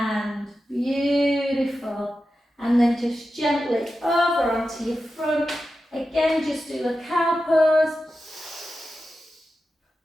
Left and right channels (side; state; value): both; normal; correlation 0.91